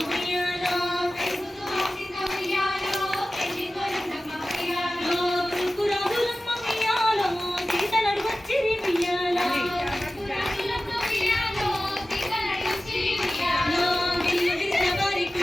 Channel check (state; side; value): normal; both; correlation 0.96